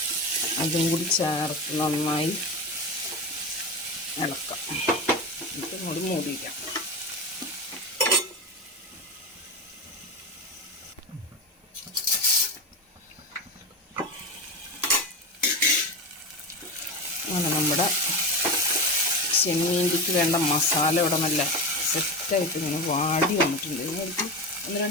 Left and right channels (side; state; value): both; normal; correlation 0.23